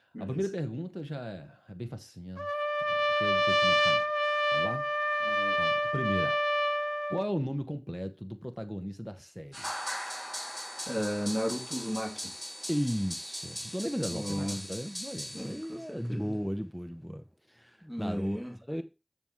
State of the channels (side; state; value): both; identical; correlation 1.00